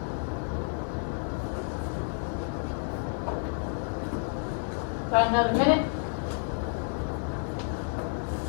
About another minute.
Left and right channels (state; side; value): silent; right; 58 dB below the other